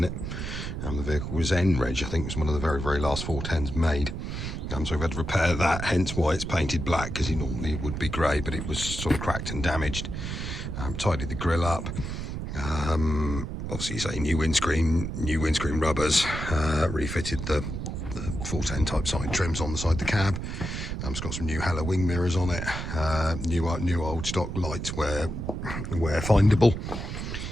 it. The vehicle was N-Reg, I think, was one of the very, very last 410s made. So we've had to repair that, hence why it's painted black, because it normally would be grey, but it was sort of cracked and damaged. Tidied the grille up. Obviously, you say new windscreen rubbers, refitted the 410 type side trims on the side of the cab. It's got some new Hella wing mirrors on it. New old stock lights where findable.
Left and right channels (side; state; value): right; noise; rumble, 5 dB below the sound